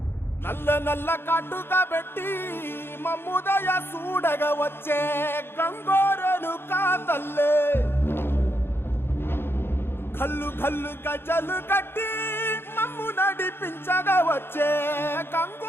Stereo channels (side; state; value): right; late; 0.11 ms